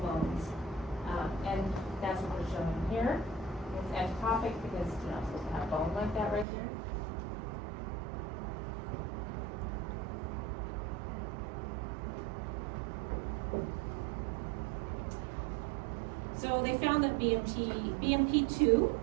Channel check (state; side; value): drops out; left; at 6.5 s